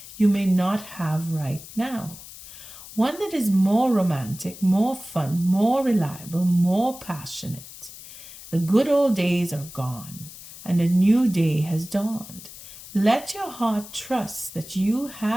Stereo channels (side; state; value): left; noise; hiss, 16 dB below the sound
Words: you may not have right now. One that is more romantic, more fun, more reliable, more passionate. The good old days are gone, and a new day has dawned. Let your heart trust that you